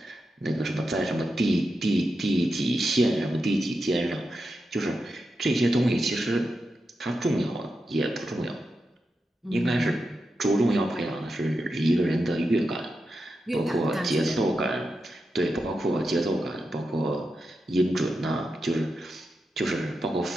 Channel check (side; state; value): both; normal; correlation 0.88